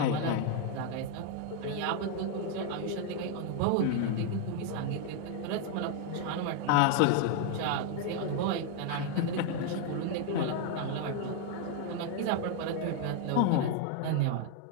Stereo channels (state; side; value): different; both; correlation 0.00